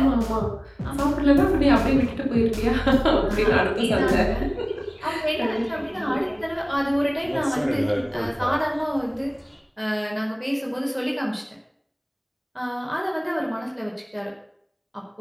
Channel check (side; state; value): both; identical; correlation 1.00